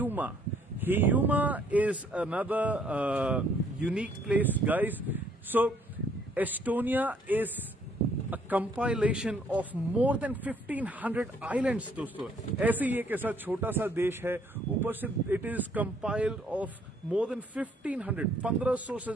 Hiiumaa is another unique place, guys. So Estonia is a compilation of more than 1500 islands, दोस्तों. ऐसे ही एक ऐसा छोटा सा देश है, ऊपर से it is compiled of more than 1500 से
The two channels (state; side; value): normal; both; correlation 0.64